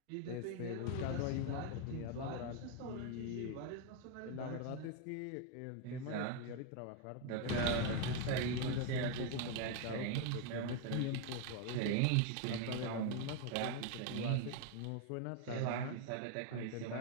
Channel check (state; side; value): different; both; correlation 0.01